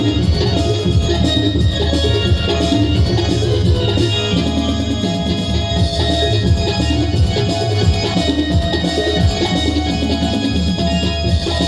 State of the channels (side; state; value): both; identical; correlation 1.00